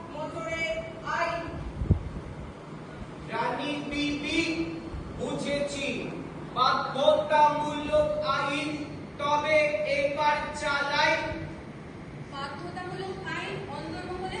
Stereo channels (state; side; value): identical; both; correlation 1.00